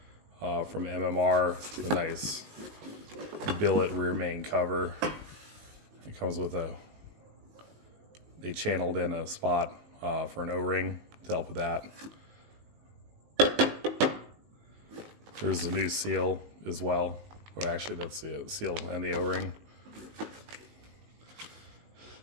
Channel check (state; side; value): late; left; 19 ms